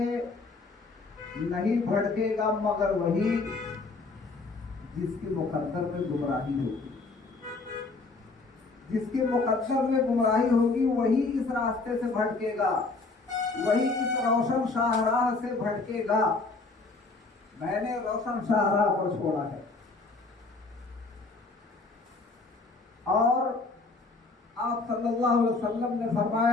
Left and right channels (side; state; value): right; quieter; 3.7 dB